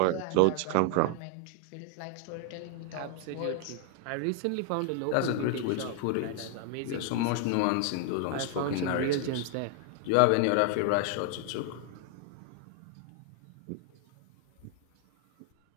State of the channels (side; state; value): both; different; correlation 0.00